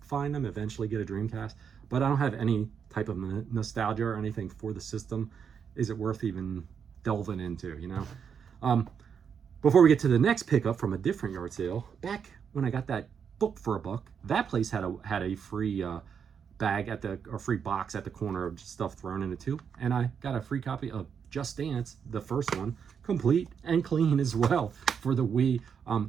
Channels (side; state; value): left; quieter; 7.1 dB